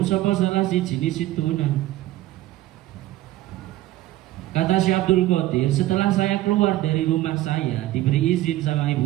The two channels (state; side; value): quieter; left; 15.5 dB